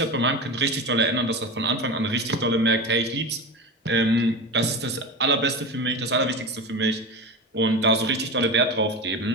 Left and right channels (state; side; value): normal; both; correlation 0.25